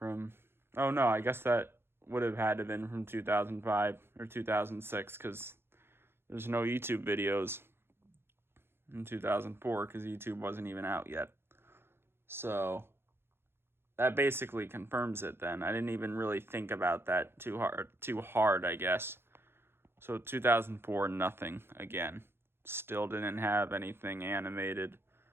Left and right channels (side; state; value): left; late; 0.11 ms